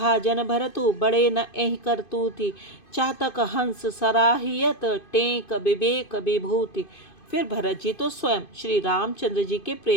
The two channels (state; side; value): late; right; 2.5 ms